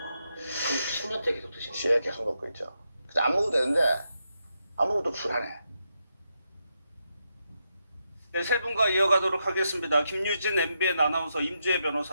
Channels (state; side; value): inverted; both; correlation -0.84